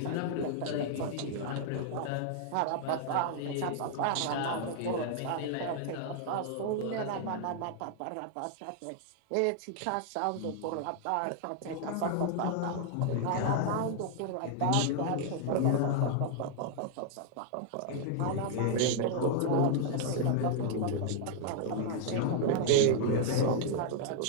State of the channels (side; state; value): both; different; correlation -0.01